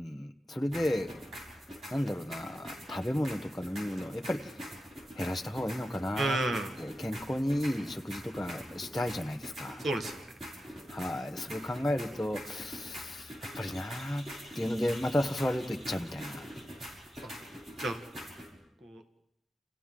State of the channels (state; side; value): normal; both; correlation 0.91